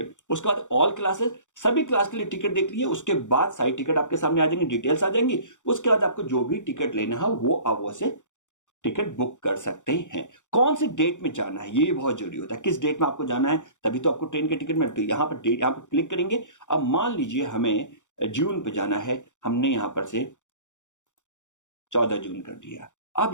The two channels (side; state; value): right; late; 0.85 ms